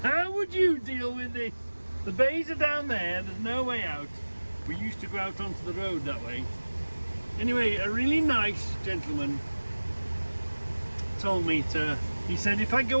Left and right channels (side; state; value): both; inverted; correlation -1.00